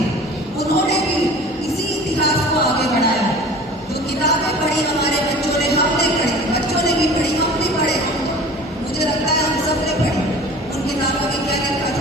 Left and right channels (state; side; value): normal; both; correlation 0.43